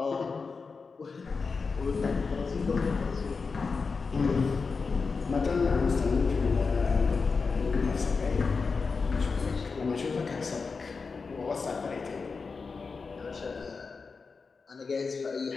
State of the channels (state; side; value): quieter; right; 4.7 dB